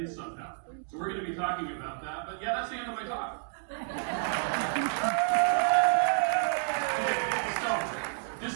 somehow. So we're going to be talking about that. But yeah, that's the end of my talk. Okay, so,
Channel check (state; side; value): silent; left; digital silence